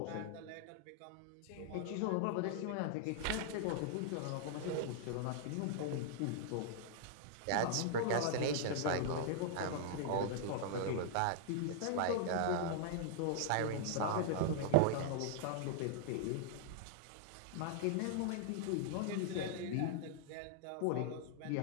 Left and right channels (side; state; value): both; different; correlation -0.01